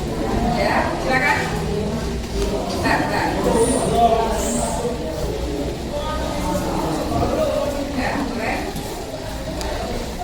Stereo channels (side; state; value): both; identical; correlation 1.00